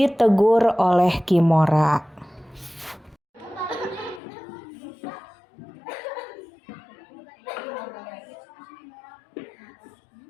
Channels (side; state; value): right; drops out; at 4.2 s